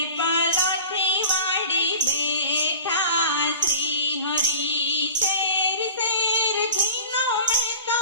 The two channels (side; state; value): both; inverted; correlation -0.38